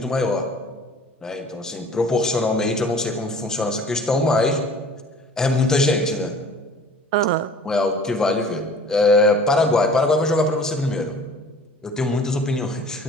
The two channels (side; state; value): both; normal; correlation 0.47